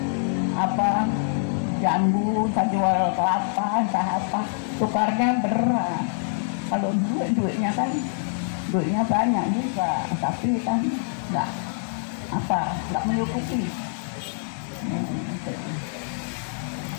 jambu, entah jual kelapa, entah apa, tukarnya berat. Kalau duitnya banyak juga, tapi kan nggak menyukupi.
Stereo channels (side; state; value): right; silent; 62 dB below the other